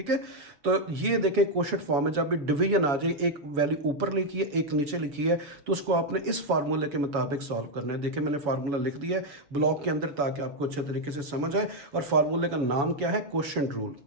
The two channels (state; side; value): late; left; 7.1 ms